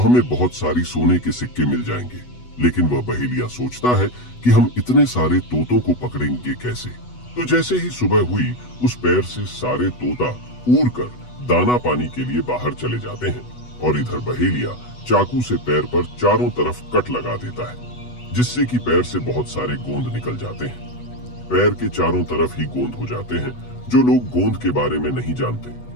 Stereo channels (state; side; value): late; right; 8.1 ms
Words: बहुत सारी सोने के सिक्के मिल जाएंगे। लेकिन वह बहेलिया सोचता है कि हम इतने सारे तोतों को पकड़ेंगे कैसे। तो जैसे ही सुबह हुई उस पैर से सारे तोता उड़कर दाना पानी के लिए बाहर चले जाते हैं और इधर बहेलिया चाकू से पैर पर चारों तरफ कट लगा देता है जिससे कि पैर से बहुत सारे गोंद निकल जाते हैं। पैर के चारों तरफ ही गोंद हो जाते हैं। जो लोग गोंद के बारे में नहीं जानते,